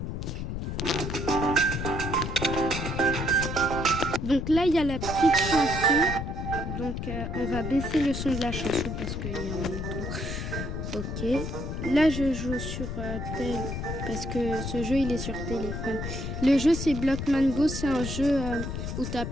Donc là il y a la petite chanson. Donc on va baisser le son de la chanson parce qu'il y en a trop. Ok. Là je joue sur tel parce que ce jeu il est sur téléphone. Le jeu c'est Blockman Go, c'est un jeu où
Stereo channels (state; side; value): noise; left; rumble, 4 dB below the sound